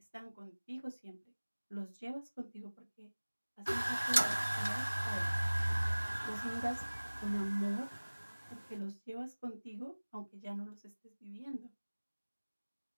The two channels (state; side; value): inverted; both; correlation -1.00